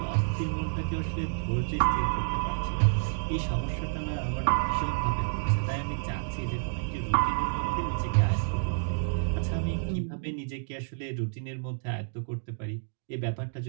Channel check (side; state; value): left; silent; digital silence